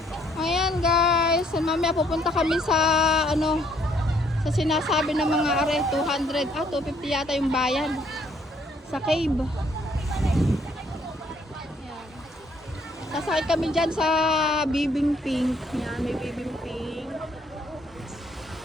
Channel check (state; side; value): normal; both; correlation 0.66